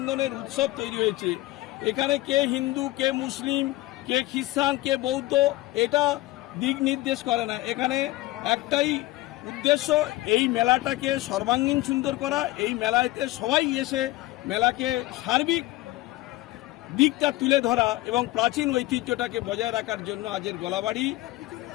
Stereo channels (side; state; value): right; quieter; 18.1 dB